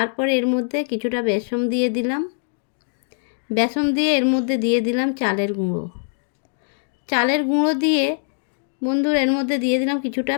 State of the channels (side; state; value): right; silent; digital silence